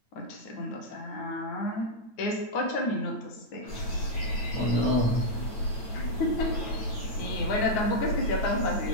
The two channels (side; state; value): right; late; 9.1 ms